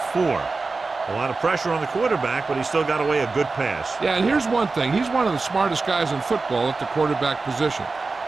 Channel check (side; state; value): left; quieter; 3.9 dB